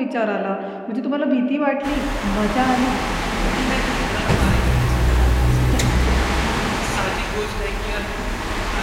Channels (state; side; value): identical; both; correlation 1.00